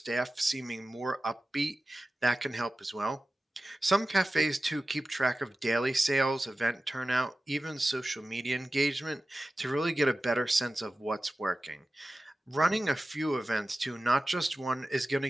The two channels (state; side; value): normal; both; correlation 0.95